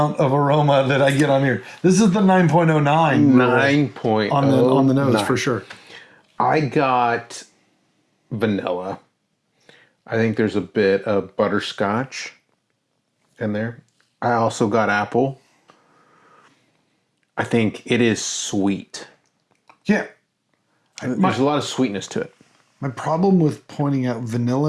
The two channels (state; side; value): identical; both; correlation 1.00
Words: of aroma that I get on here. This is the 9.09 9.09 on the nose for sure. I got vanilla. I think there's a bit of butterscotch in there. I also got apple. I think it is sweet. Yeah. There's a lot of sweetness to it. My problem with pointing out